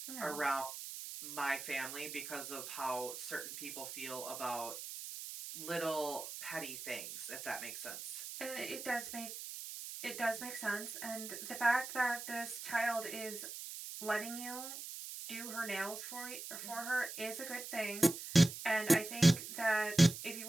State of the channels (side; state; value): right; noise; hiss, 9 dB below the sound